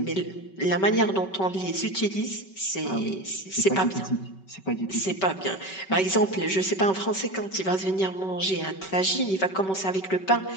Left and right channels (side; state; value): right; late; 5.3 ms